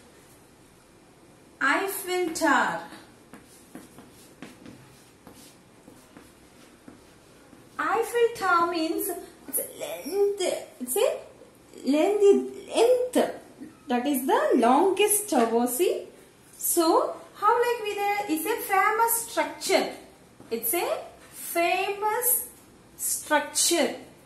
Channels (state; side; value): identical; both; correlation 1.00